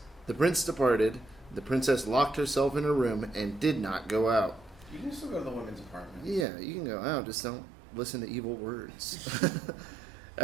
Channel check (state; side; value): drops out; left; at 6.5 s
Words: The prince departed. The princess locked herself in her room and did not go out. You can still go to the women's apartment. Yeah, you can go out, just don't listen to evil words.